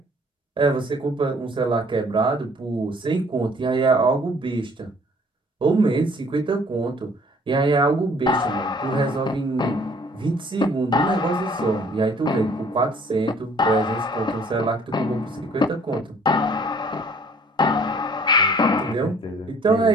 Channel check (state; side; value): normal; both; correlation 0.57